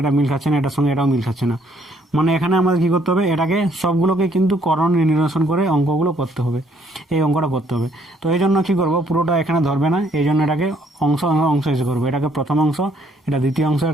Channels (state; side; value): normal; both; correlation 0.66